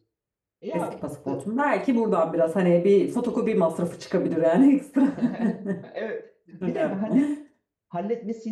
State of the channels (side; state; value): both; identical; correlation 1.00